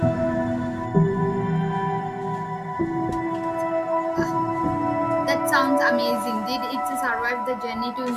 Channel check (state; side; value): identical; both; correlation 1.00